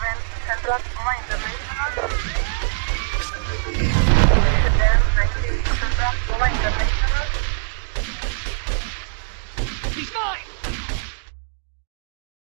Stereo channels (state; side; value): silent; left; digital silence